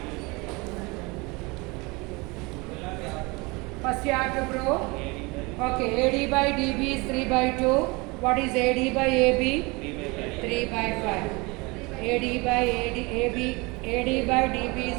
First you have to prove. Okay, AD by DB is 3 by 2. What is AD by AB? 3 by 5. AD by AD by DB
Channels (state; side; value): quieter; left; 26.0 dB